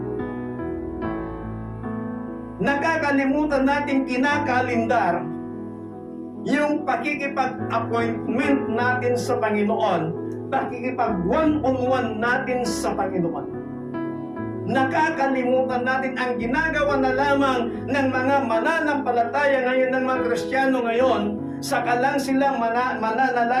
Nakakalimutan nating kinakalindar yung pakikipag-appointment natin sa Panginoon, pakikipag one-on-one natin sa Panginoon. Nakakalimutan natin ang ginagawa na lamang ng mga mananampalataya ngayon, ng mga Kristiyano ngayon, saka lang silang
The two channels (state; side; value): identical; both; correlation 1.00